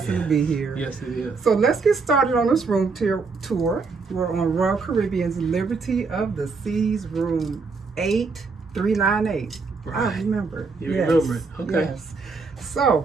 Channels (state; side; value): quieter; left; 4.4 dB